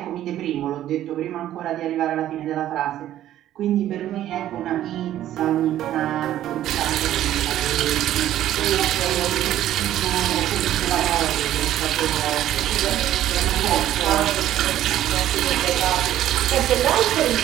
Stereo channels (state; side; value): quieter; left; 12.5 dB